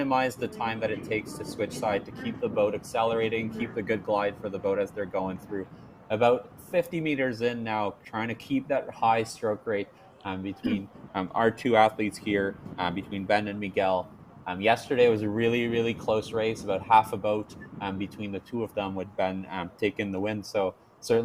the time that it takes to switch side to keep the boat accelerating, keep the good glide for the boat as they're going through. About 50 meters in now, trying to keep that high stroke rate between our two athletes here, between Ben and Miguel. Yesterday was a really, really close race, about half a boat between the two of them, with Ben taking the win. So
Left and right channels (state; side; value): identical; both; correlation 1.00